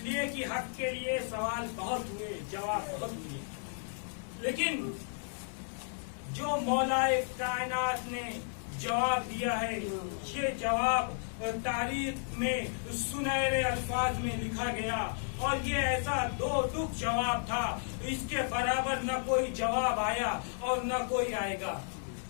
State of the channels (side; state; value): right; silent; digital silence